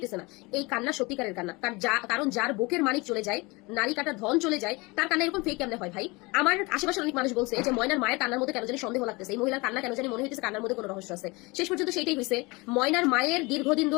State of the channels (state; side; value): quieter; right; 25.1 dB